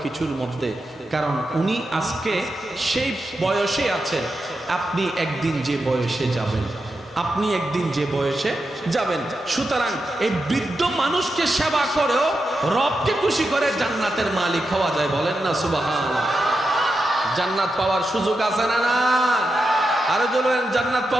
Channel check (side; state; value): both; normal; correlation 0.88